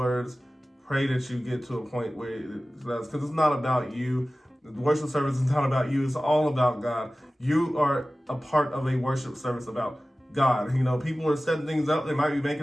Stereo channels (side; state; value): both; normal; correlation 0.96